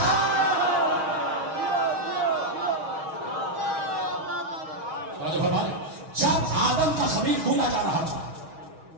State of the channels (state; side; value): late; left; 6.4 ms